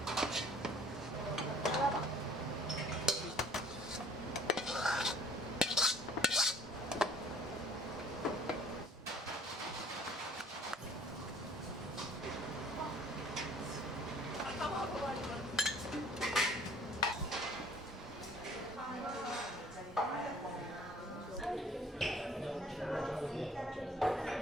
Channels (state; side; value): normal; both; correlation 0.55